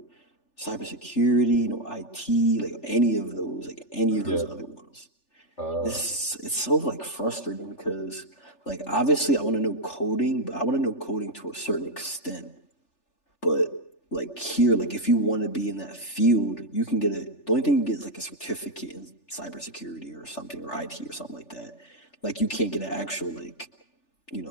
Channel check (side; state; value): right; late; 3.4 ms